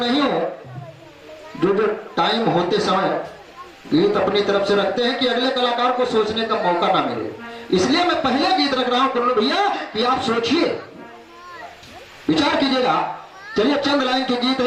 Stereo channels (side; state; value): both; identical; correlation 1.00